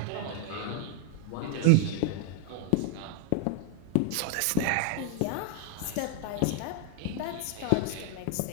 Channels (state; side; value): different; both; correlation 0.00